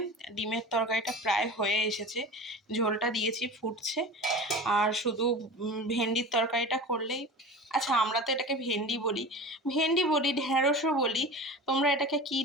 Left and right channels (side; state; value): both; normal; correlation 0.33